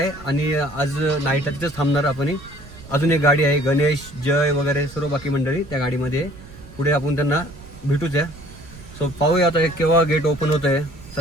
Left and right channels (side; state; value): right; noise; rumble, 18 dB below the sound